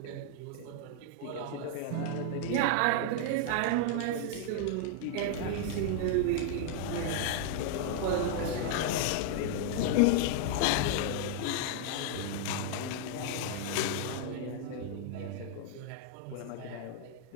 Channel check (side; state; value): both; different; correlation -0.01